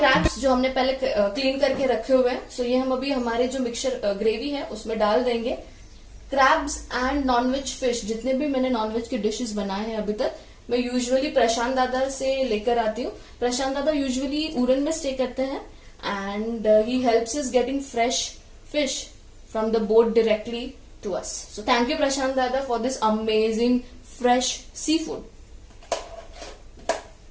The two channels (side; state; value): both; identical; correlation 1.00